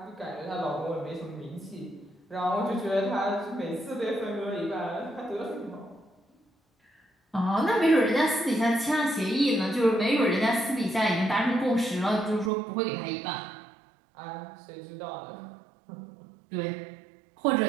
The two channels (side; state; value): left; drops out; at 12.5 s